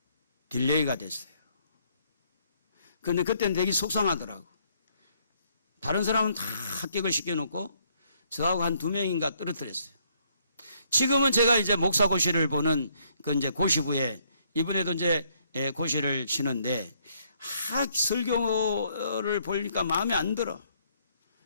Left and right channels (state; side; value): inverted; both; correlation -0.69